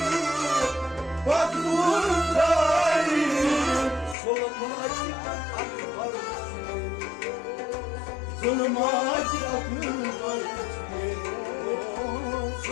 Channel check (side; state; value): right; drops out; at 4.2 s